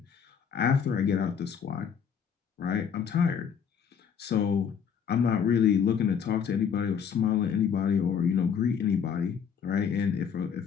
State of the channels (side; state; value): right; quieter; 7.4 dB